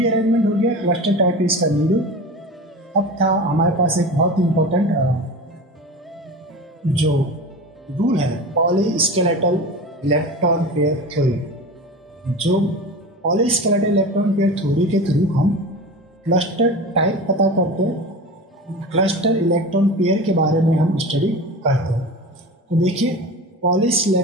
अरेंजमेंट हो गया, क्लस्टर टाइप इसका नीडो। अब था हमारे पास एक बहुत इंपॉर्टेंट जो रूल है, पॉलीस्केलेटल इलेक्ट्रॉन पेयर थ्योरी। जो पॉलीस्केलेटल इलेक्ट्रॉन पेयर थ्योरी के थ्रू हम क्लस्टर टाइप पता करते हैं, क्लस्टर इलेक्ट्रॉन पेयर के बारे में हम स्टडी करते हैं। तो देखिए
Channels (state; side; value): normal; both; correlation 0.30